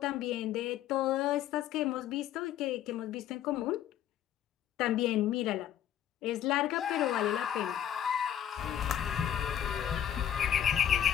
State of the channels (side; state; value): right; quieter; 10.5 dB